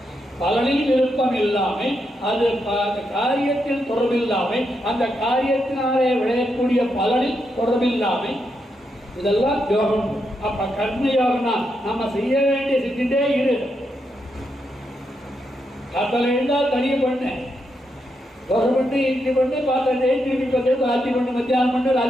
பலனில் விருப்பம் இல்லாமல், அது காரியத்தில் தொடர்பில்லாமல், அந்த காரியத்தினாலே விளையக்கூடிய பலனில் தொடர்பில்லாமல், இதெல்லாம் யோகம். அப்ப கர்ம யோகம்னா நம்ம செய்ய வேண்டிய செஞ்சுட்டே இரு. கத்தல இருந்தால் தனியை பண்ணு, தோசை பண்ணு, இட்லி பண்ணு, பாத்திரம் திருப்பி பார்த்து ராத்திரி பண்ணு, மத்தியானம் பண்ணு,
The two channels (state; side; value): normal; both; correlation 0.82